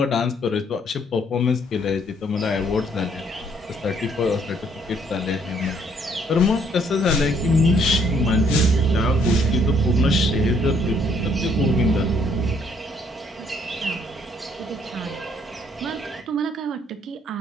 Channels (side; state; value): both; normal; correlation 0.66